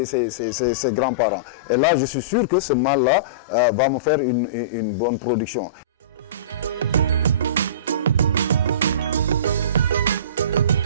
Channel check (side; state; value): both; inverted; correlation -0.32